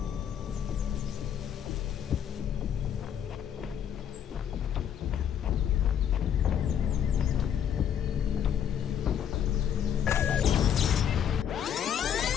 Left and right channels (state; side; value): quieter; right; 9.0 dB